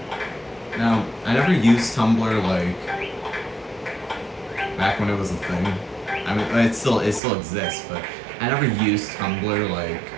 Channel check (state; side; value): drops out; left; at 7.2 s